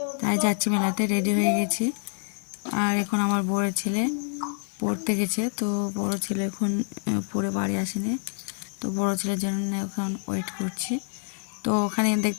তাই যাচ্ছি মেলাতে। রেডি হয়ে গেছি। আর এখন আমার বড় ছেলে পড়তে গেছে, তো বড় ছেলে এখন পড়ে বাড়ি আসেনি, তো বড় ছেলের জন্য এখন ওয়েট করছি। তো ওখানে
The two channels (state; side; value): silent; right; 56 dB below the other